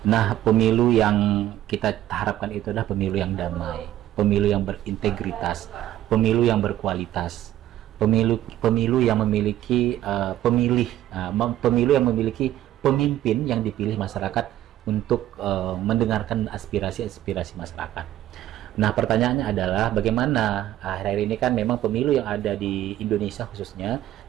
Nah, pemilu yang kita harapkan itu adalah pemilu yang damai, pemilu yang berintegritas, pemilu yang berkualitas, pemilu yang memiliki pemilu yang memiliki pemimpin yang dipilih masyarakat untuk mendengarkan aspirasi-aspirasi masyarakat. Nah, pertanyaannya adalah bagaimana akhir-akhir ini kan memang pemilu yang ada di Indonesia khususnya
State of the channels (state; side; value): quieter; left; 13.1 dB